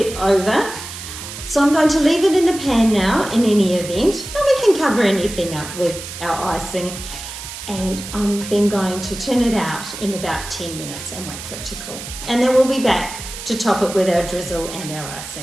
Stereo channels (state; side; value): noise; right; hiss, 10 dB below the sound